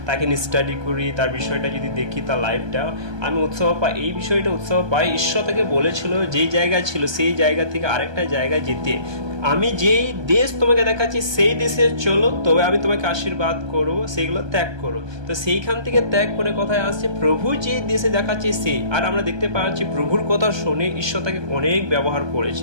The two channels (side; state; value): left; late; 1.2 ms